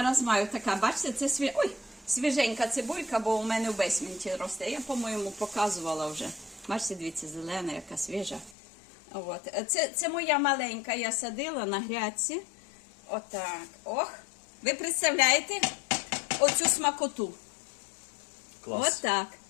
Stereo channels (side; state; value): right; drops out; at 8.6 s